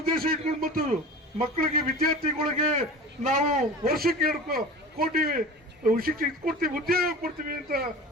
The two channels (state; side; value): normal; both; correlation 0.35